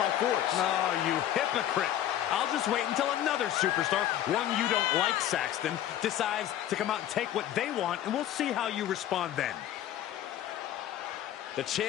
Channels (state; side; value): quieter; right; 11.9 dB